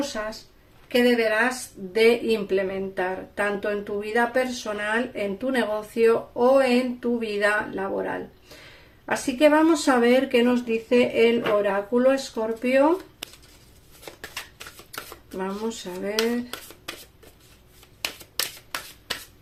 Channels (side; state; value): both; identical; correlation 1.00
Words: que deberás de implementar, tanto en tu vida personal, en tu negocio o en tu vida laboral. Así que vamos a ver qué nos dice el oráculo Escorpio. Vamos a ver.